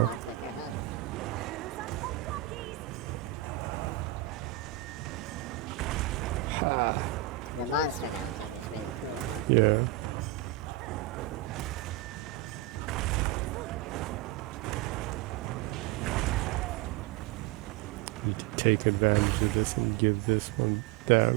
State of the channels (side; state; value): left; quieter; 14.2 dB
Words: quicker, huh? The monster mounting is really cool, huh? Yeah. Need to take advantage of this and give this one